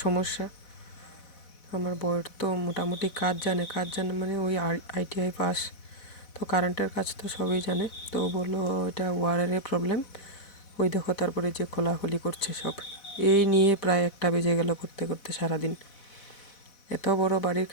সমস্যা। আমার বউয়ের তো মোটামুটি কাজ জানে মানে ওই ITI পাস, তো কারেন্টের কাজ তো সবই জানে। তো ও বললো এটা ওয়ারের প্রবলেম। ওই দেখো তারপরে যে খোলাখুলি করছে সব। এই নিয়ে প্রায় 1টা বেজে গেল করতে করতে সারাদিন। এত বড় বাড়ির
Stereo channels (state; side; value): late; right; 4.1 ms